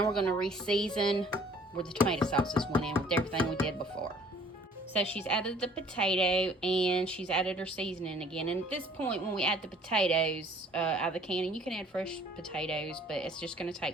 we're going to re-season where the tomato sauces went in with everything we did before. So she's added the potato, and she's added her seasoning again. And at this point, when we add the potatoes out of the can, and you can add fresh potatoes, but it's just going to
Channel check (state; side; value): normal; both; correlation 0.55